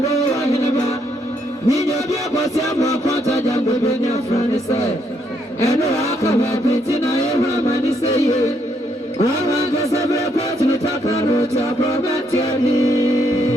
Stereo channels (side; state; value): both; normal; correlation 0.74